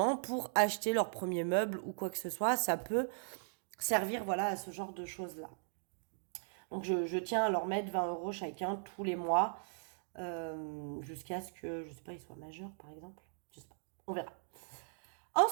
pour acheter leur premier meuble ou quoi que ce soit, ça peut servir voilà, à ce genre de choses-là. Donc je tiens à leur mettre 20 € chacun tous les mois jusqu'à ce que, je sais pas, ils soient majeurs par exemple. Je sais pas, on verra.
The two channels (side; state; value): left; silent; digital silence